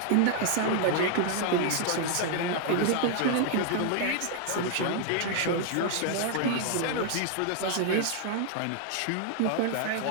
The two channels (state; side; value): different; both; correlation 0.00